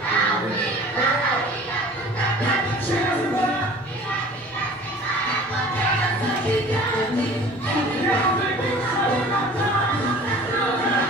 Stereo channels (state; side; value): normal; both; correlation 0.45